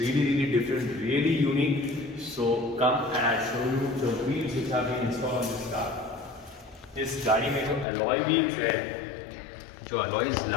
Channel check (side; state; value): right; drops out; at 7.9 s